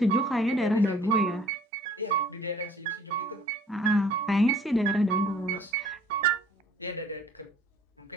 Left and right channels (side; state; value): both; normal; correlation 0.54